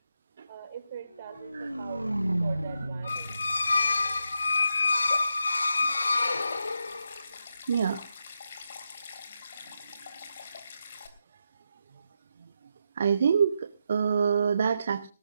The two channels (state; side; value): inverted; both; correlation -0.85